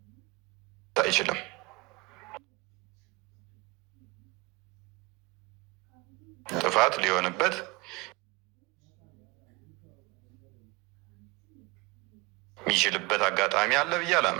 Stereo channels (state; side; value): quieter; left; 24.1 dB